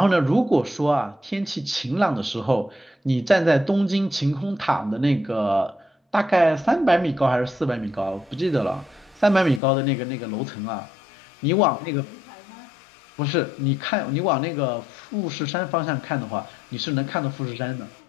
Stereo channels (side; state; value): right; drops out; at 9.6 s